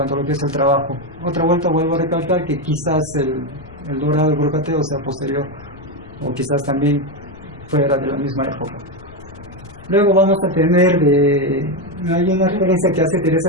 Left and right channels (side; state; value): left; noise; rumble, 20 dB below the sound